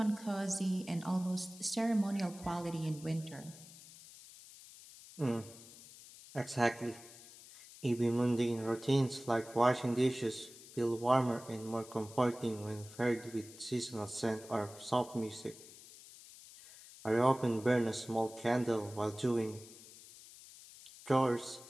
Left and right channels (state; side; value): noise; left; hiss, 18 dB below the sound